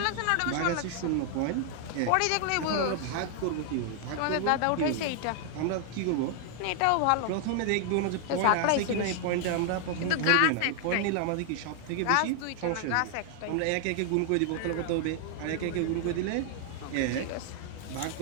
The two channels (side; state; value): both; different; correlation 0.00